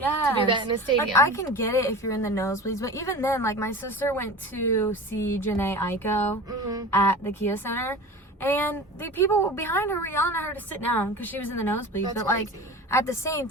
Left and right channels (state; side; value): normal; both; correlation 0.34